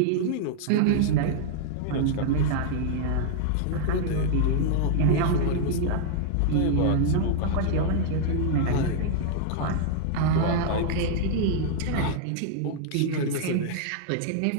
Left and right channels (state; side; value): different; both; correlation 0.00